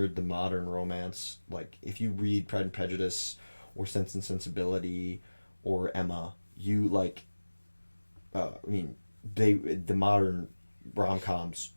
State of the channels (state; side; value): inverted; both; correlation -1.00